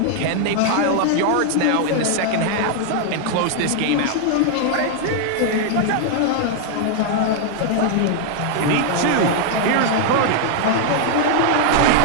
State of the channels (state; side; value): different; both; correlation 0.00